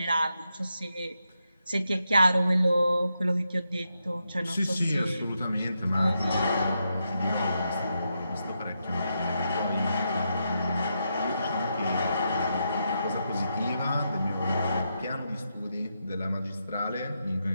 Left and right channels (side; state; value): both; inverted; correlation -0.83